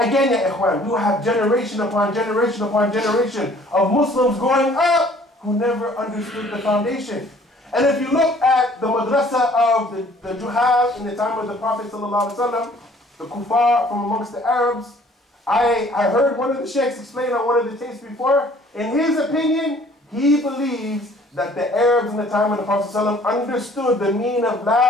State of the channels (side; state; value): both; normal; correlation 0.55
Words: ya ikhwan, we will have generation upon generation upon generation of Muslims growing up who never understood the foundation. And if you look at the madrasa of the Juhal in the time of the Prophet ﷺ, the kuffar from amongst the Arabs, I heard one of the sheikhs explain on one of the tapes before. In his opinion, he believes that the Arabs in the time of the Prophet ﷺ understood the meaning of